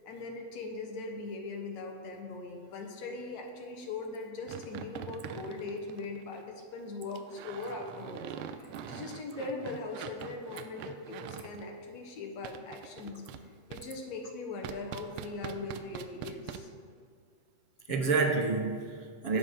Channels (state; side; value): late; right; 7.2 ms